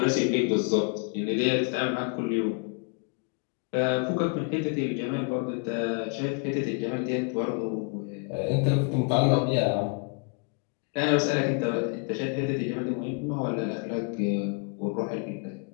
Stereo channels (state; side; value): quieter; right; 35.8 dB